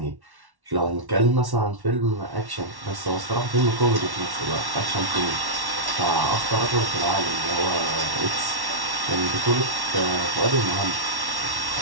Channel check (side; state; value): left; late; 1.1 ms